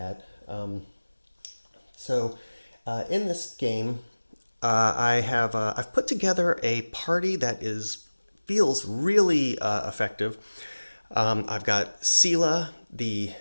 In this game, I've put together a party that is feels really effective. I've got Sela, the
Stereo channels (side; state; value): both; inverted; correlation -1.00